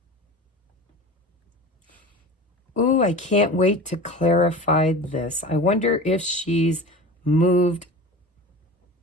Ooh, I can't wait to clarify this. I wonder if she's moved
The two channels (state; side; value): normal; both; correlation 0.34